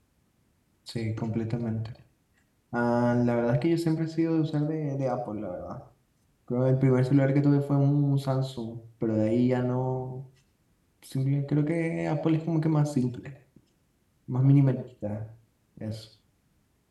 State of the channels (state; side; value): identical; both; correlation 1.00